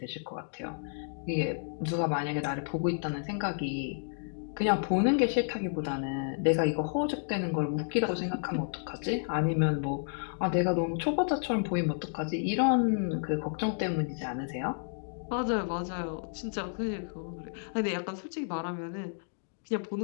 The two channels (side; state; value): right; silent; digital silence